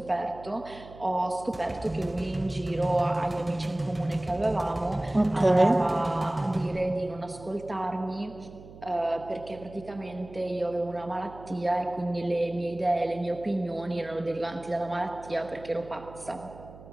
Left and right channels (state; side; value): noise; right; hum, 18 dB below the sound